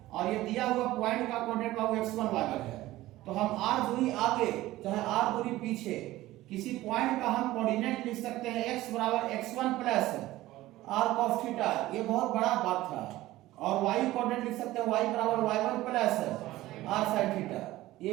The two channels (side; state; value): left; quieter; 16.6 dB